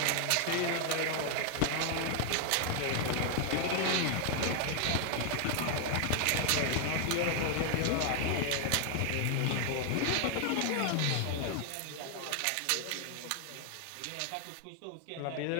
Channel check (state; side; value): different; both; correlation 0.00